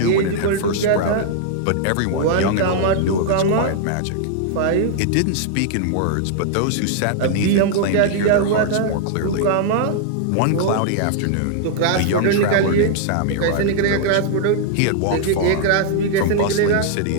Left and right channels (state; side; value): different; both; correlation -0.01